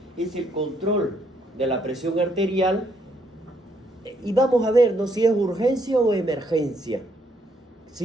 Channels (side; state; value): both; normal; correlation 0.72